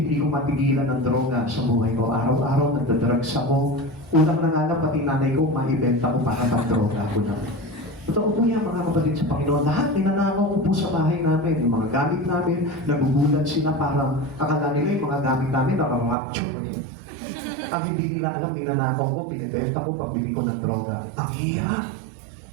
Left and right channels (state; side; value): drops out; left; at 16.2 s